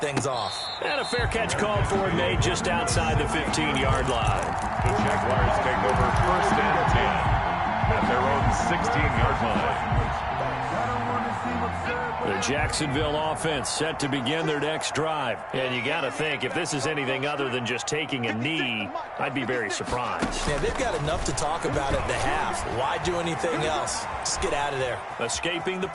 off. And a fair catch called for and made just outside the 15-yard line. The Jaguars take over 1st and 10 at their own 16-yard line. The Jacksonville offense set to begin their next drive. And you got to think, if this is anything other than just taking a knee, I'd be very surprised. Yeah, they've got enough to talk about at the half. Why do anything else? Just get out of there. Escaping the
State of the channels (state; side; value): identical; both; correlation 1.00